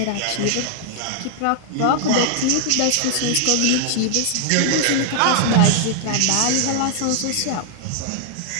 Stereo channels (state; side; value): different; both; correlation 0.00